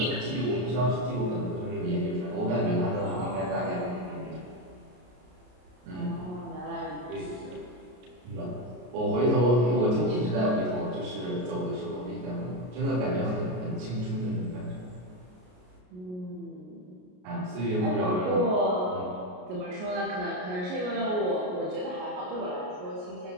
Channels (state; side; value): late; left; 33 ms